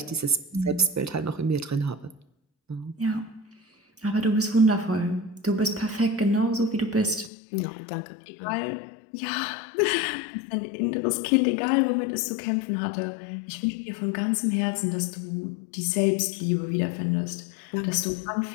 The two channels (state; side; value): drops out; right; at 7.3 s